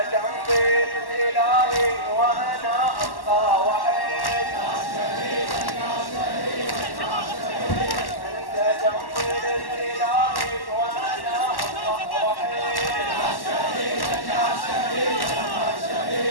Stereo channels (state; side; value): late; right; 1.1 ms